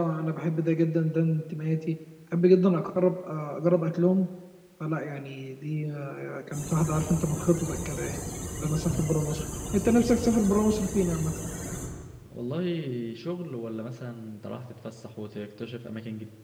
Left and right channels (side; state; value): both; identical; correlation 1.00